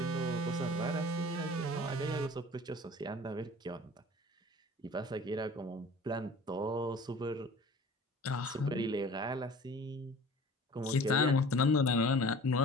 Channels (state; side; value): normal; both; correlation 0.44